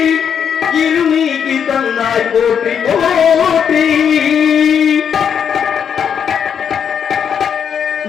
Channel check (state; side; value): quieter; right; 7.7 dB